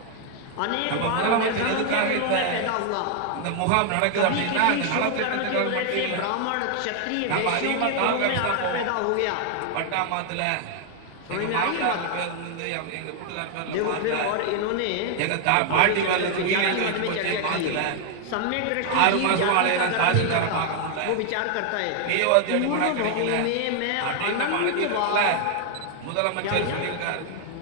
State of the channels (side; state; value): both; different; correlation 0.00